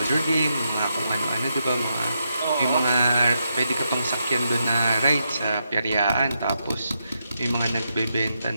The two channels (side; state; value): both; inverted; correlation -0.83